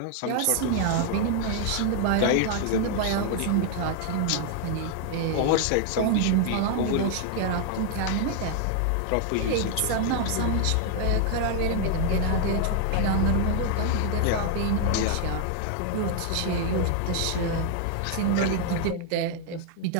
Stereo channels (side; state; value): both; different; correlation 0.00